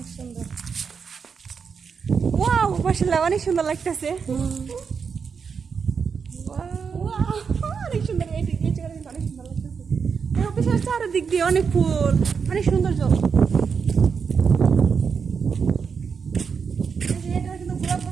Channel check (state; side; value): quieter; left; 6.0 dB